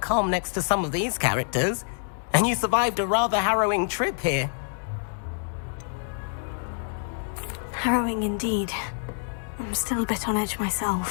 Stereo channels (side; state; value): right; silent; digital silence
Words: calm next to some of these characters, and you survived a rather harrowing trip here. Harrowing indeed. I'm still a bit on edge